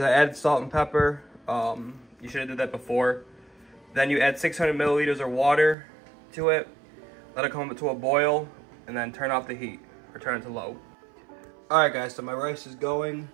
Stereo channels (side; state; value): left; drops out; at 5.8 s